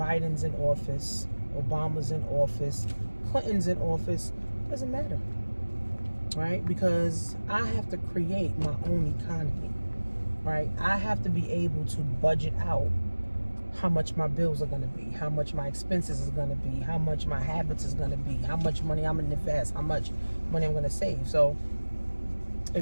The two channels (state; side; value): inverted; both; correlation -1.00